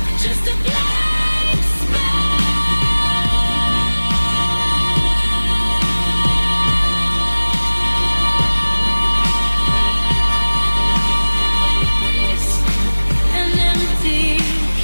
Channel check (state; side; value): inverted; both; correlation -1.00